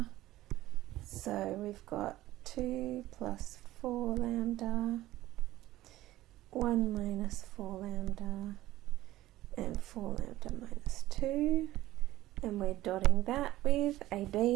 So we've got 2 plus 4 lambda, 1 minus 4 lambda, and 4 lambda minus 2. And we're dotting that with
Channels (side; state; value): left; quieter; 15.8 dB